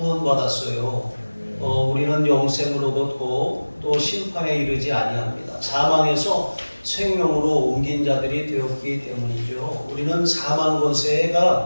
우리는 영생을 얻었고 또 심판에 이르지 아니합니다. 사망에서 생명으로 옮긴 자들이 되었기 때문이죠. 우리는 사망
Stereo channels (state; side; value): inverted; both; correlation -1.00